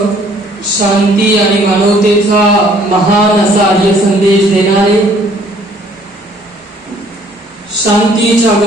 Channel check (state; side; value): normal; both; correlation 0.60